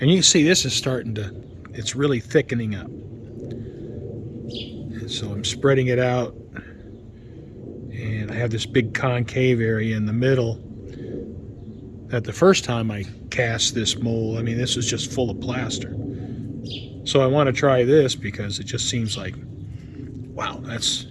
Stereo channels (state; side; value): identical; both; correlation 1.00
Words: And you can see this is starting to, it's really thickening up. And so I'm spreading it out, and I have this big concave area in the middle that the first time I cast this mold, I mean, this was just full of plaster. So I want to try this because it just seems like, wow,